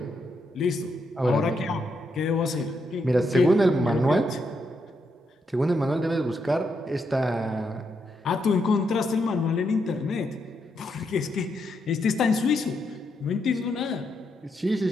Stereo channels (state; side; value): normal; both; correlation 0.80